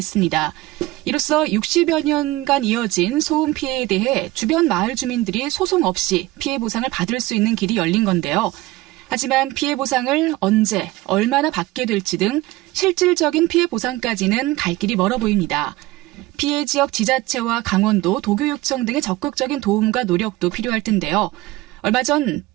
이로써 60여 년간 이어진 소음 피해에 대해 주변 마을 주민들이 소송 없이 피해 보상을 받을 수 있는 길이 열린 건데요. 하지만 피해 보상을 언제, 얼마나 받게 될지 등 실질적인 피해 보상까지는 갈 길이 멀어 보입니다. 피해 지역 지자체와 강원도, 도교육청 등의 적극적인 도움과 노력도 필요할 텐데요. 얼마 전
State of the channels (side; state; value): left; quieter; 18.8 dB